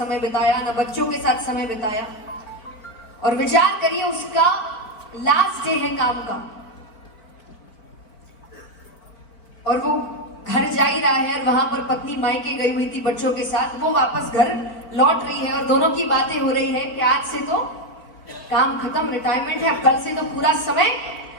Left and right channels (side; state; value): right; late; 4.6 ms